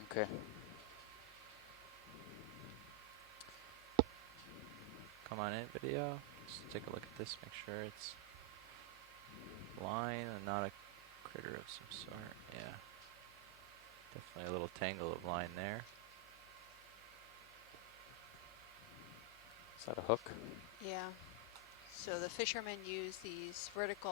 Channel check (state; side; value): noise; left; hum, 23 dB below the sound